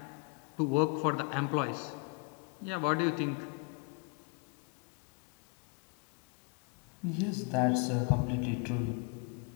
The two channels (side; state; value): right; quieter; 33.4 dB